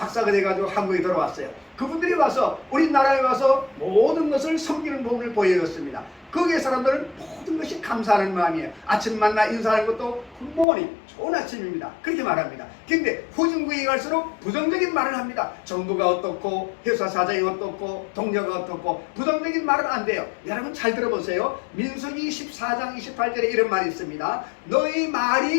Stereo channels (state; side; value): drops out; right; at 10.7 s